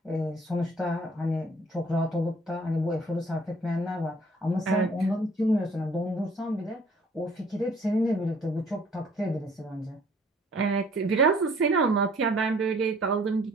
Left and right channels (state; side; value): normal; both; correlation 0.57